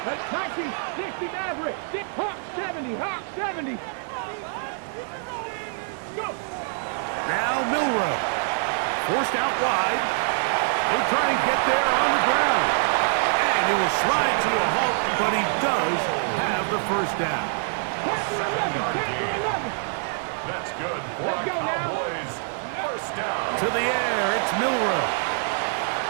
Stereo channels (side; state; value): left; silent; digital silence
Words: That's 1960 Maverick. Hawk 70. Hawk 70. Go. Now Milrow. Forced out wide. He'll try and get there on the ground. And he will slide to a halt, but he does have the 1st down. 7-yard gain. That's good for Let's our go now. Cowboys. 1st down. To the air, it's Milrow.